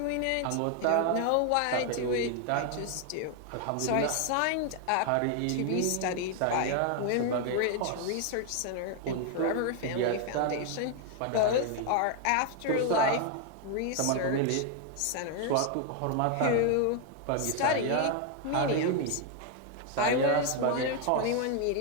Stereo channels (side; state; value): both; different; correlation 0.01